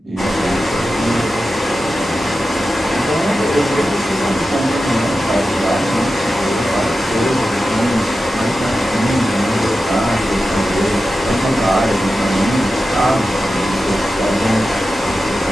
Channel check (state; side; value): normal; both; correlation 0.92